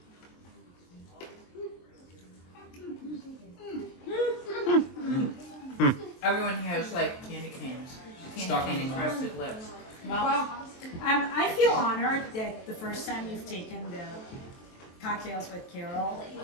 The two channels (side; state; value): right; late; 23 ms